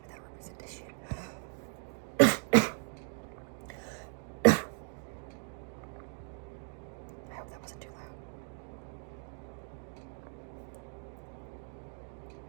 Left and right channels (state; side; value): silent; left; 53 dB below the other